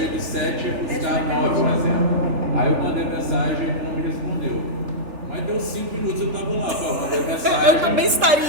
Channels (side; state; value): left; late; 3.4 ms